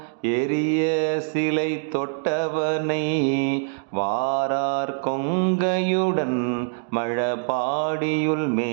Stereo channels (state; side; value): silent; left; digital silence